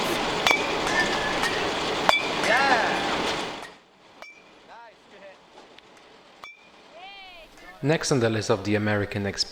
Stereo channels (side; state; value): both; identical; correlation 1.00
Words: Next on the list of the American